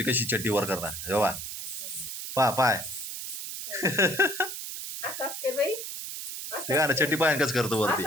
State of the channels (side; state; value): right; noise; hiss, 7 dB below the sound